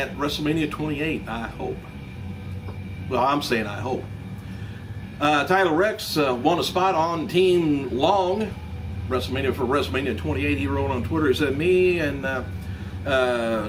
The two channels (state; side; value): identical; both; correlation 1.00